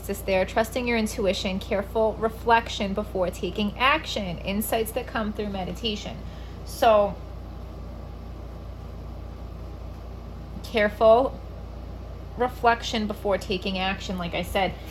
there. Trusting your intuition, careful reflection before taking action, insights that come through meditation. So, careful reflection before taking action, like I said,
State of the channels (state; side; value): identical; both; correlation 1.00